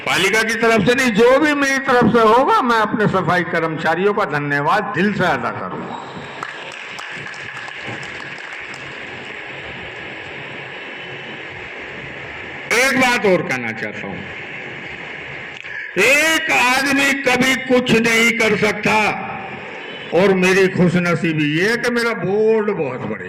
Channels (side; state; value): both; identical; correlation 1.00